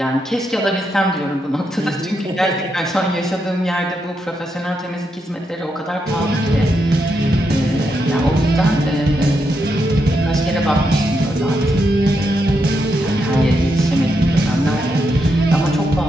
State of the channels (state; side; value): normal; both; correlation 0.82